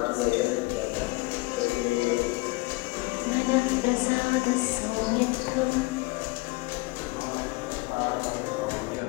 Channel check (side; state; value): right; quieter; 24.5 dB